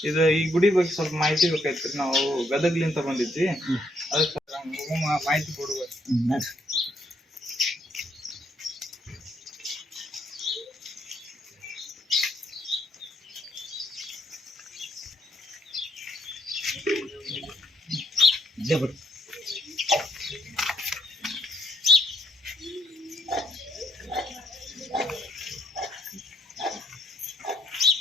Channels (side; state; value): both; normal; correlation 0.71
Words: ಇದು ಈ ಗುಡಿ ಬಗ್ಗೆ ಸ್ವಲ್ಪ ಮಾಹಿತಿ ಬೇಕಾಯ್ತು. ನಾವು ಗದಗ್ಲಿಂತ ಬಂದಿದ್ವಿ, ಅದಕ್ಕೆ ಮಾಹಿತಿ ಕೊಡ್ಬೇಕು.